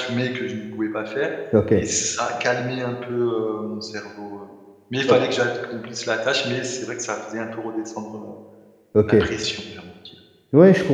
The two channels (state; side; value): identical; both; correlation 1.00